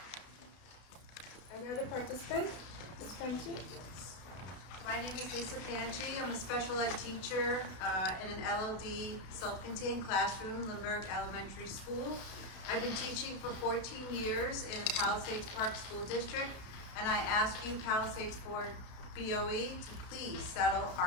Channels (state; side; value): late; right; 32 ms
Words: Any other participant? My name is Lisa Panchi. I'm a special ed teacher in an LLD self-contained classroom, Lindbergh Elementary School. I've been teaching for 14 years in the Palisades Park School District, and I ask you, Palisades Board BOE, to please settle